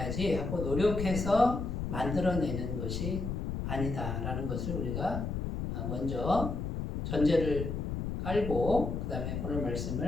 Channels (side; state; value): left; noise; rumble, 3 dB below the sound